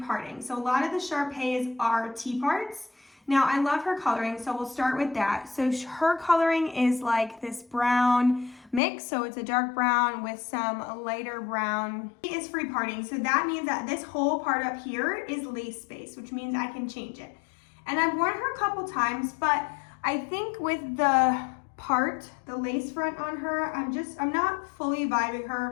parting. So a lot of the Sharpays are T-parts. Now I love her coloring, so we'll start with that. So her coloring is like this brown mix, so it's a dark brown with some lighter brown. It is free parting, so that means that this whole part up here is lace space, which means I can change it. And I've worn her a couple times, but I think with the part, the lace front on her, I'm not fully vibing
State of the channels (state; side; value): drops out; right; at 8.8 s